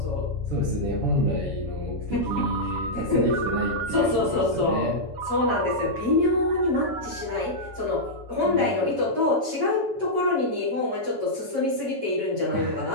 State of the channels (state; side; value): late; left; 6.7 ms